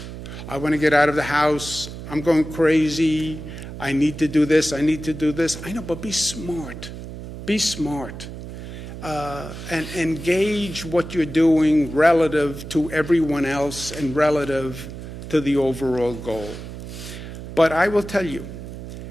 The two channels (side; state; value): right; noise; hum, 11 dB below the sound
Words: I want to get out of the house. I'm going crazy. I need to do this. I need to do this. I know, but be smart. Be smart. And engage what you're doing relative to everyone else and relative to the overall goal. But I will tell you,